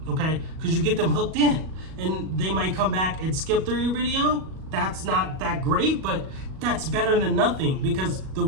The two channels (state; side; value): late; left; 37 ms